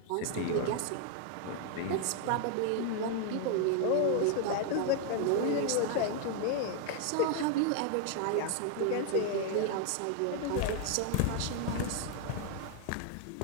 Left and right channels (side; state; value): both; different; correlation 0.00